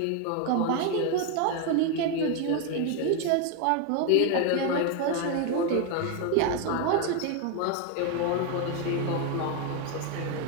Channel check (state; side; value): different; both; correlation 0.01